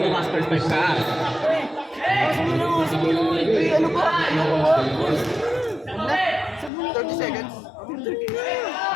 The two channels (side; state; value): right; drops out; at 6.7 s